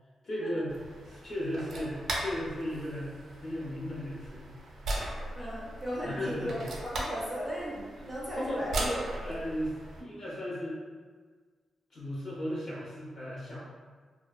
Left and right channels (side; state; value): both; normal; correlation 0.87